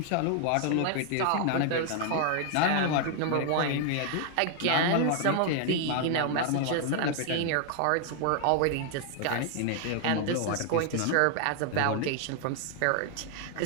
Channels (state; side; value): different; both; correlation 0.00